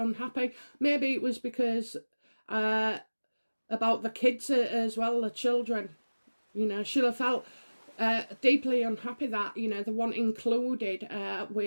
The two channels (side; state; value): both; inverted; correlation -1.00